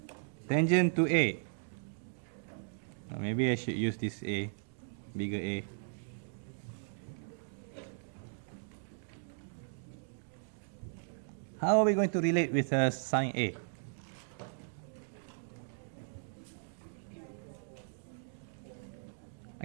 Tangent to A. Maybe I should use this A, bigger A. How are we going to relate with sine A?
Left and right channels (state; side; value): silent; left; digital silence